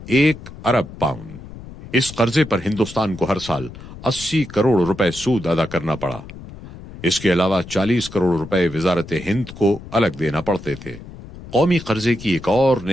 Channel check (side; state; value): left; noise; rumble, 15 dB below the sound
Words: 1 ارب پاؤنڈ۔ اس قرضے پر ہندوستان کو ہر سال 80 کروڑ روپے سود ادا کرنا پڑا۔ اس کے علاوہ 40 کروڑ روپے وزارت ہند کو الگ دینا پڑتے تھے۔ قومی قرضے کی ایک اور